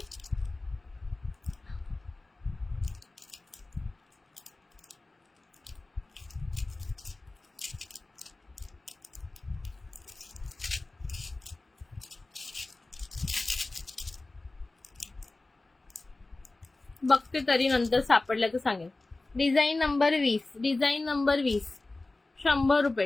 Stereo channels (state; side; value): quieter; right; 3.1 dB